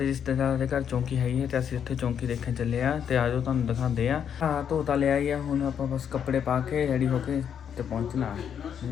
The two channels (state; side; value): quieter; right; 8.2 dB